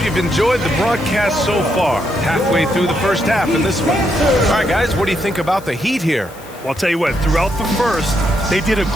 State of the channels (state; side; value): noise; left; hiss, 22 dB below the sound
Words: you've enjoyed the broadcast so far. Halfway through the first half in this one. All right, guys, what do you think about the Heat here? Well, I'll tell you what, throughout the first, they did a